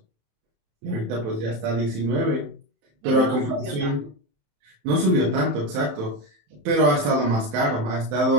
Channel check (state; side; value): late; left; 27 ms